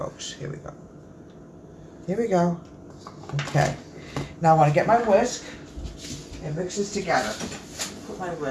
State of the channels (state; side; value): identical; both; correlation 1.00